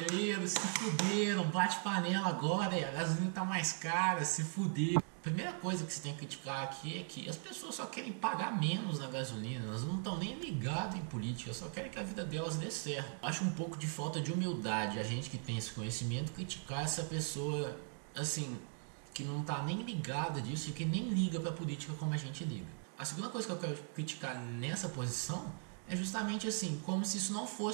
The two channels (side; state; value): left; silent; 52 dB below the other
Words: se fuderam, bate panela agora, a gasolina tá mais cara, se fuderam. A primeira coisa que você tem que criticar aqui é que as pessoas só querem pagar menos na gasolina, elas não estão nem ligadas em política, só querem que a vida delas dê certo. Eu acho um pouco de falta de humildade a gente que tem esse conhecimento criticar essa pessoa assim, que não tá nem ligada disso e que nem liga pra política como a gente liga. A segunda coisa que eu quero criticar nessa posição é justamente assim, como se isso não